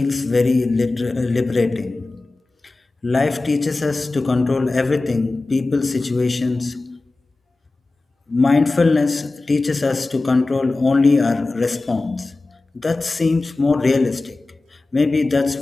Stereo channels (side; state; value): right; quieter; 3.3 dB